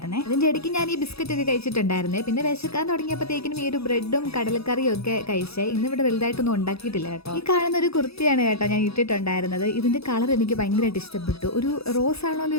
അതിന്റെ ഇടയ്ക്ക് ഞാൻ ഈ ബിസ്ക്കറ്റ് ഒക്കെ കഴിച്ചിട്ടുണ്ടായിരുന്നേ. പിന്നെ വിശക്കാൻ തുടങ്ങിയപ്പോഴത്തേക്കിനും ഈ ഒരു ബ്രെഡും കടലക്കറിയും ഒക്കെ കഴിച്ചേ. ഇന്ന് ഇവിടെ വലുതായിട്ടൊന്നും ഉണ്ടാക്കിയിട്ടില്ല കേട്ടോ. ഈ കാണുന്ന ഒരു കുർത്തിയാണ് കേട്ടോ ഞാൻ ഇട്ടിട്ടുണ്ടായിരുന്നത്. ഇതിന്റെ കളർ എനിക്ക് ഭയങ്കരമായിട്ട് ഇഷ്ടപ്പെട്ടു. ഒരു റോസ് ആണോ എന്ന്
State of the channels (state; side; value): late; right; 0.78 ms